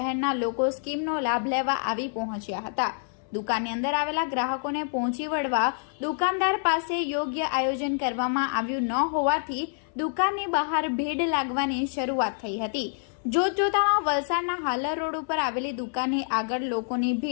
લોકો સ્કીમનો લાભ લેવા આવી પહોંચ્યા હતા। દુકાનની અંદર આવેલા ગ્રાહકોને પહોંચી વળવા દુકાનદાર પાસે યોગ્ય આયોજન કરવામાં આવ્યું ન હોવાથી દુકાનની બહાર ભીડ લાગવાની શરૂઆત થઈ હતી। જોતજોતામાં વલસાડના હાલર રોડ ઉપર આવેલી દુકાનની આગળ લોકોની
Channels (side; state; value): right; silent; 60 dB below the other